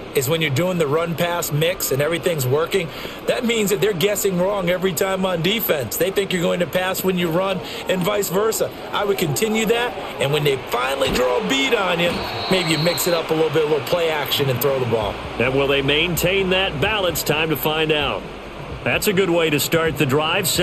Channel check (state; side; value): identical; both; correlation 1.00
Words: is when you're doing the run-pass mix and everything's working, that means that they're guessing wrong every time on defense. They think you're going to pass when you run and vice versa. I would continue that, and when they finally draw a beat on you, maybe you mix it up a little play action and throw the ball. And will they maintain that balance? Time to find out. That's a good way to start the drive,